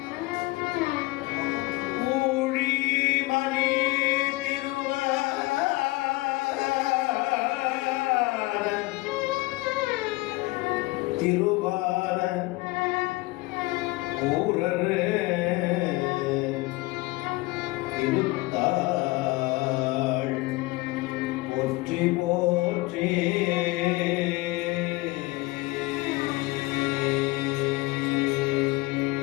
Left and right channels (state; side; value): quieter; right; 21.7 dB